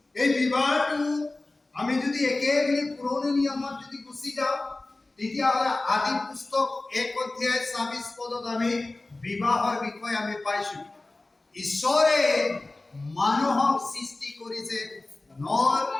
এই বিবাহটো আমি যদি একেবাৰে পুৰণি নিয়মত যদি গুচি যাওঁ তেতিয়াহ'লে আদি পুস্তক 1 অধ্যায় 26 পদত আমি বিবাহৰ বিষয়ে আমি পাইছো ঈশ্বৰে মানুহক সৃষ্টি কৰিছে নৰ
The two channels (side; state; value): right; quieter; 3.0 dB